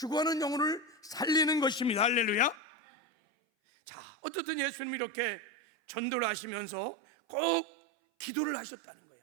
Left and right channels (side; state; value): left; drops out; at 2.6 s